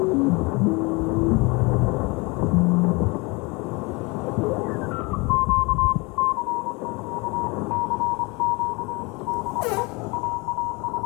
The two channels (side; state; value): right; quieter; 27.2 dB